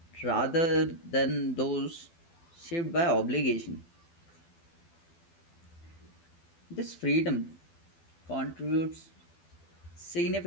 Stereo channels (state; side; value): late; right; 12 ms